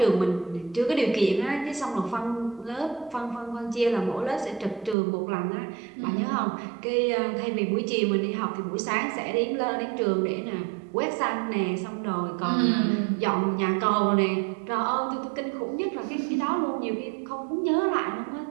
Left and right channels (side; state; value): left; drops out; at 5.0 s